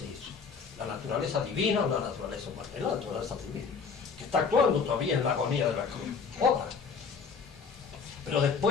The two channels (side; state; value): right; quieter; 5.5 dB